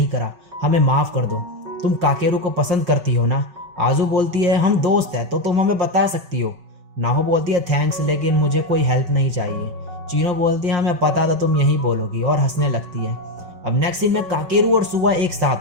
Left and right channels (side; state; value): left; late; 5.3 ms